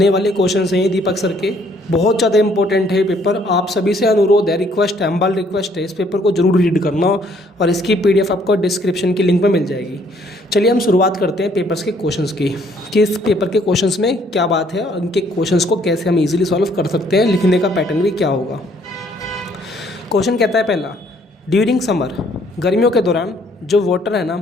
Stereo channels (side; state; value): both; normal; correlation 0.64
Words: वाले क्वेश्चन हैं दीपक सर के, बहुत ज़्यादा इंपॉर्टेंट है पेपर। आप सभी से अनुरोध है, रिक्वेस्ट है, हम्बल रिक्वेस्ट है, इस पेपर को जरूर रीड करना और इसकी PDF आपको डिस्क्रिप्शन की लिंक में मिल जाएगी। चलिए हम शुरुआत करते हैं पेपर्स के क्वेश्चंस की, कि इस पेपर के क्वेश्चंस में क्या बात है और इनके क्वेश्चंस को कैसे हम इजीली सॉल्व कर सकते हैं, लिखने का पैटर्न भी क्या होगा। क्वेश्चन कहता है पहला, ड्यूरिंग समर, गर्मियों के दौरान जो वाटर है ना,